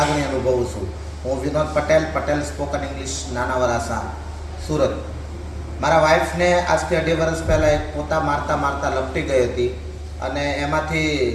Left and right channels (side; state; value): both; identical; correlation 1.00